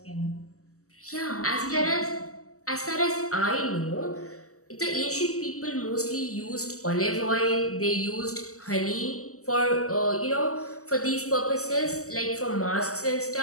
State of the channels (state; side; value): late; right; 0.65 ms